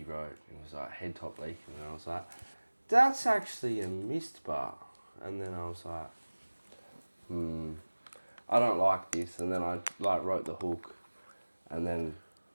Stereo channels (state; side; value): inverted; both; correlation -1.00